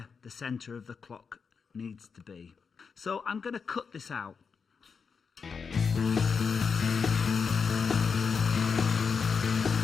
the centre of the clock needs to be. So I'm going to cut this out.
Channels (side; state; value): right; quieter; 5.7 dB